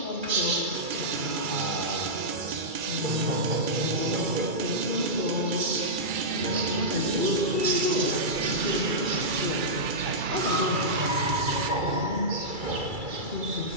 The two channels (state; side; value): late; left; 2.3 ms